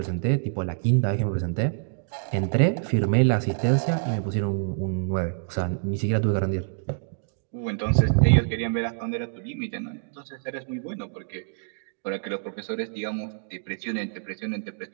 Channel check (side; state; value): left; silent; digital silence